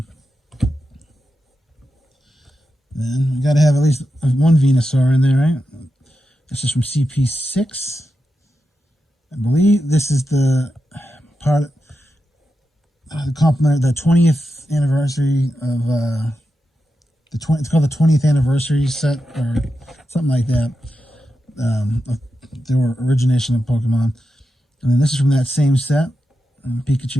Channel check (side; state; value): both; normal; correlation 0.89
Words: Then we got to have at least one Venusaur in there, right? This is from CP6. I believe this is the part the compliment, the 20th anniversary of it's called the 20th anniversary set or something like that. Their origination of Pokemon, and then this is from that same set,